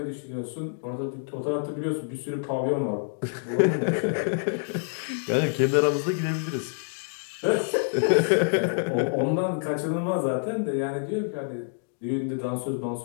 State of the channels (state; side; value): silent; right; digital silence